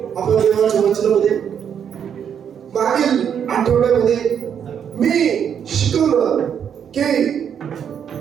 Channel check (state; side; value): quieter; left; 8.2 dB